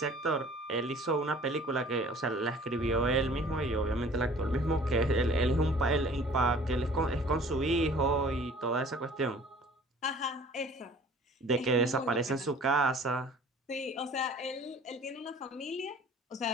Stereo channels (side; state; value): both; normal; correlation 0.49